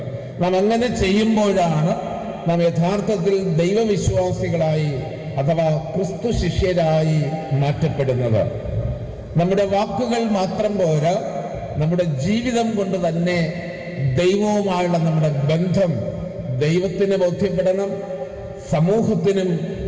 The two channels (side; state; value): both; identical; correlation 1.00